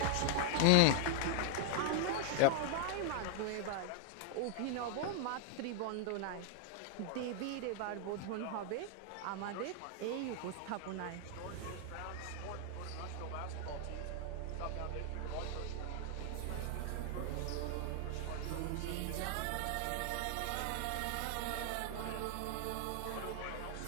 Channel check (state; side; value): different; both; correlation 0.00